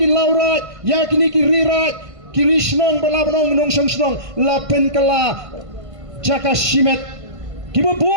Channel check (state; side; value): late; left; 1.5 ms